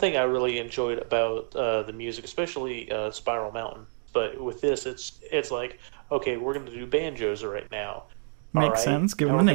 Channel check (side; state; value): left; silent; 59 dB below the other